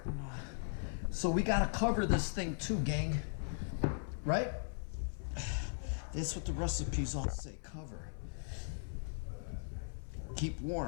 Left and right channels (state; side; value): silent; right; 52 dB below the other